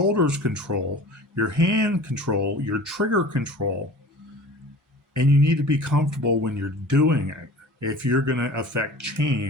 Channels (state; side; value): normal; both; correlation 0.41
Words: control, your hand control, your trigger control. And you need to be comfortable when you're doing it if you're going to affect